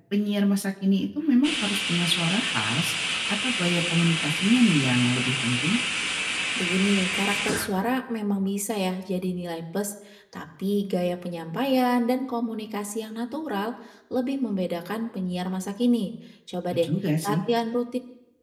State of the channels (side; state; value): both; identical; correlation 1.00